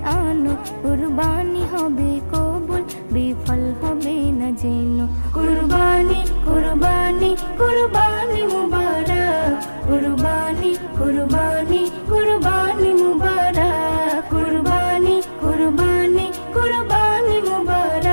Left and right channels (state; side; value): inverted; both; correlation -1.00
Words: আনো, কুরবানি হবে কবুল, বিফল হবে না জেনো। কুরবানি কুরবানি কুরবানি মুবারক, কুরবানি কুরবানি কুরবানি মুবারক, কুরবানি কুরবানি কুরবানি